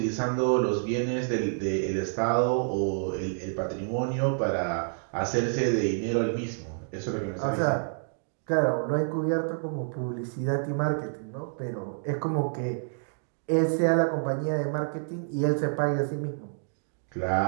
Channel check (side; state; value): left; silent; digital silence